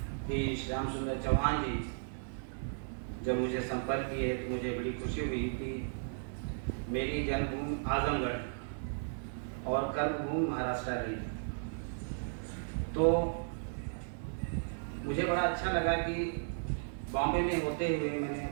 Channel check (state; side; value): silent; left; digital silence